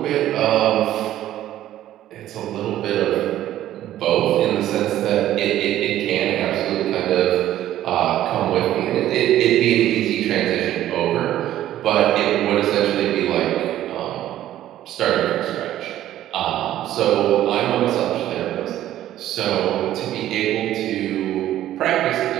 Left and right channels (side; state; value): left; quieter; 12.9 dB